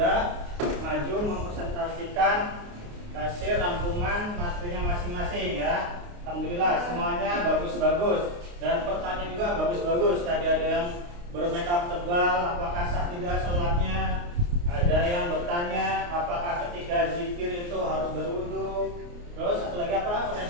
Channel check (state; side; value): late; left; 29 ms